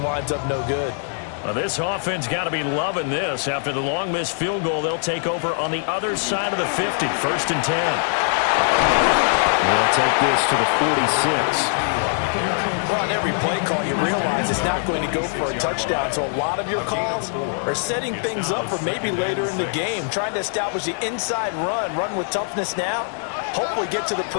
winds up no good. Well, this offense got to be loving this. After the long missed field goal, they'll take over on the other side of the 50, 1st and 10. They'll take this to the 46. Well, on every play call, you realize it's not going to go for a touchdown. So a lot of your calls are setting things up for maybe later in the game, trying to establish the inside run with toughness now, hopefully get to the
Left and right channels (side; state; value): right; silent; 64 dB below the other